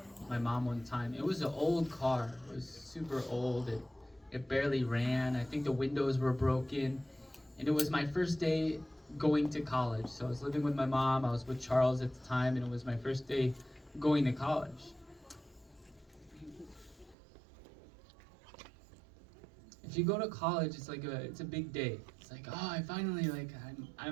one time. It was an old car. It was super old. It barely ran. I think the windows were broken. And it was my first day going to college. So I was living with my mom. I was with Charles at the time, and it was my first day going to college. If you go to college, it's a big day. It's like, oh, I finally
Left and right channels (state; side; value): drops out; left; at 17.2 s